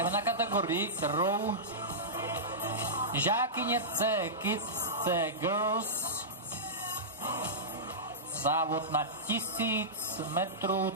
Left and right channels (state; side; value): normal; both; correlation -0.15